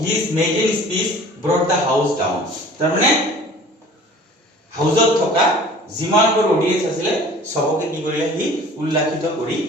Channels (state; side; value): normal; both; correlation 0.46